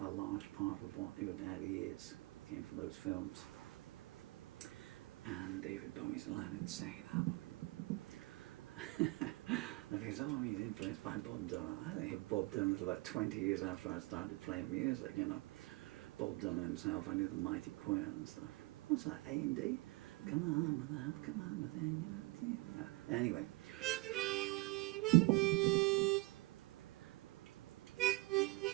large part of what Your Daddy Is came from those films. And David Bowie's Aladdin Insane album. Because he's influenced by Bob Dylan. I think of Bob Dylan was about 20 years after I started playing music, you know. Bob Dylan himself, I knew the Mighty Choir and stuff. What's that, A&D? Come on with that, come on with that, you know. Anyway.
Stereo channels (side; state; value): left; quieter; 23.3 dB